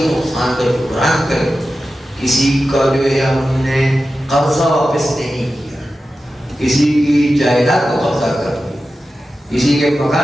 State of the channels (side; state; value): both; normal; correlation 0.93